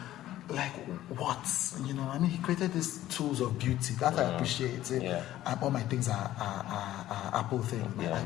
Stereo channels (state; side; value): quieter; right; 13.9 dB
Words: like what? You know, I mean, he created these tools of beauty that I appreciate. Yeah. All my things are Apple things, my Yeah.